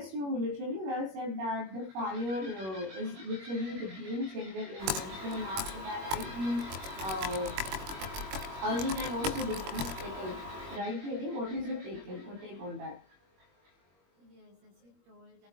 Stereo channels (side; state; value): left; late; 21 ms